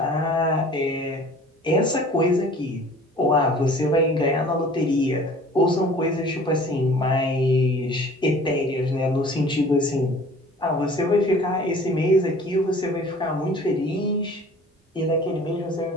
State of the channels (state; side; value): normal; both; correlation 0.48